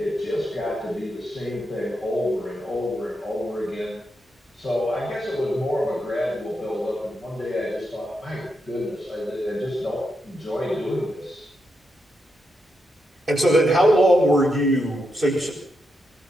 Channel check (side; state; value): both; normal; correlation 0.84